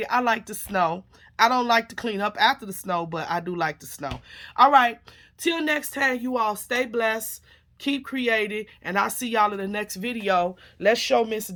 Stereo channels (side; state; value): both; identical; correlation 1.00